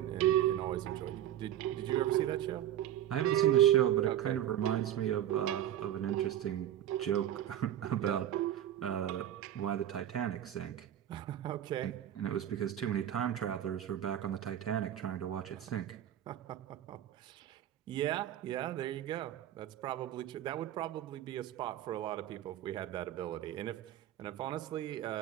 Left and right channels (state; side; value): quieter; left; 11.5 dB